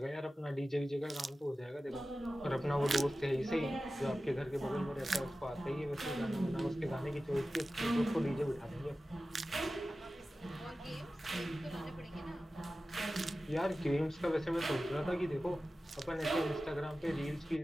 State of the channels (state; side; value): normal; both; correlation 0.95